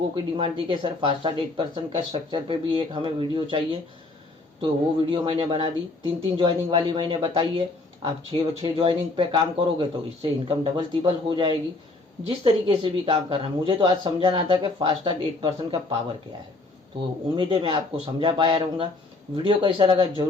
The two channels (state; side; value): quieter; right; 3.2 dB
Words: की डिमांड थी कि सर फास्ट स्टार्ट 8% का स्ट्रक्चर पे भी एक हमें वीडियो चाहिए, तो वो वीडियो मैंने बना दी। 3 ज्वाइनिंग वाली मैंने बताई है। आप 6 ज्वाइनिंग पे काम करोगे तो इससे इनकम डबल तिबल हो जाएगी। जिस तरीके से भी काम करना, मुझे तो आज समझाना था कि फास्ट स्टार्ट 8% का पावर क्या है। तो उम्मीद है मैं आपको समझा पाया रहूँगा। वीडियो कैसा लगा